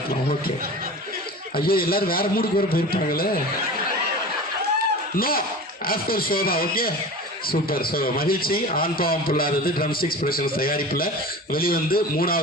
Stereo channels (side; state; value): both; normal; correlation 0.34